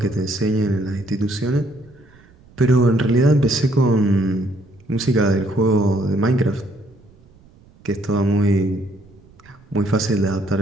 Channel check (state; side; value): noise; right; rumble, 27 dB below the sound